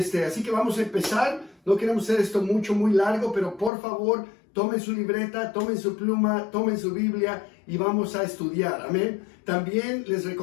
que vamos a empezar. No queremos hacer esto muy largo, pero por favor, tomen su libreta, tomen su pluma, tomen su Biblia y vamos a estudiar. Amén. También les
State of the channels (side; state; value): right; drops out; at 3.7 s